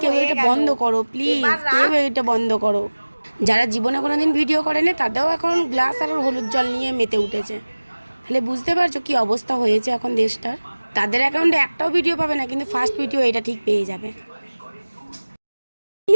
কেউ হয়ে এটা গেল। বন্ধ করো, প্লিজ এবার কেউ রাখ। এটা বন্ধ করো। যারা জীবনে কোনোদিন ভিডিও করেনি তাদেরও এখন গ্লাস আর হলুদ জল নিয়ে মেতে উঠেছে। তাহলে বুঝতে পারছো কি অবস্থা হয়েছে এখন দেশটার। তাদের অ্যাকাউন্টে একটাও ভিডিও পাবে না, কিন্তু ফার্স্ট ভিডিও এটা ঠিক পেয়ে যাবে।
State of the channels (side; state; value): both; inverted; correlation -1.00